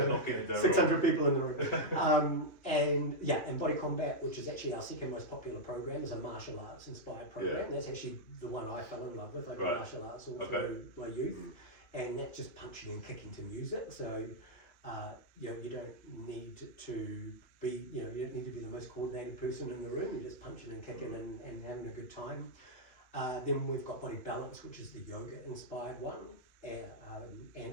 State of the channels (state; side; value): late; right; 3.0 ms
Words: 600 people in the room. And Body Combat, which is actually our second most popular program, is a martial arts inspired program. That's actually the one I fell in love with. I did martial arts all through my youth, and that's just punching and kicking to music. So you don't need to be, you don't need to be the most coordinated person in the room. You're just punching and kicking and having a good time. Then we've got Body Balance, which is the yoga inspired one, and